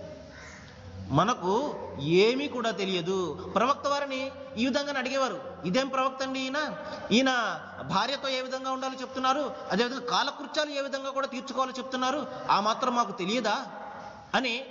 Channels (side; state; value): both; identical; correlation 1.00